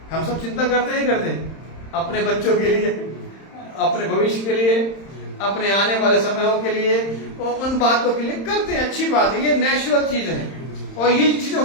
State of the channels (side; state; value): right; late; 31 ms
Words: हम सब चिंता करते ही करते हैं, अपने बच्चों के लिए, अपने भविष्य के लिए, अपने आने वाले समयों के लिए, और उन बातों के लिए करते हैं, अच्छी बात है, ये नेचुरल चीज है और ये चीजें